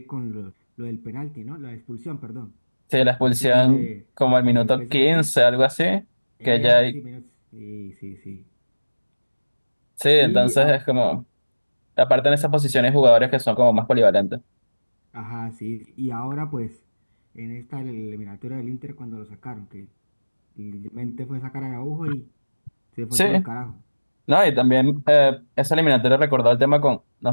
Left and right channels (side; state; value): both; inverted; correlation -1.00